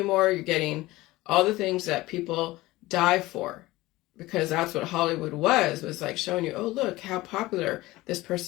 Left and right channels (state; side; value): quieter; right; 18.9 dB